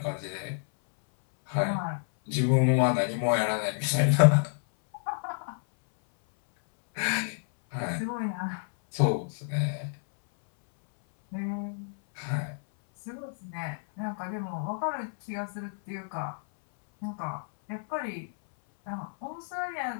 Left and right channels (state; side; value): silent; right; 58 dB below the other